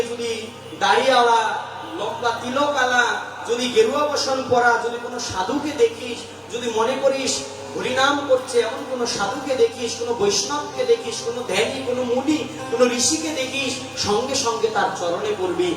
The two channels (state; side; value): identical; both; correlation 1.00